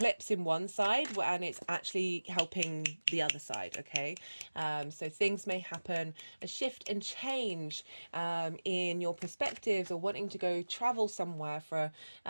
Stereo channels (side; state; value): both; inverted; correlation -1.00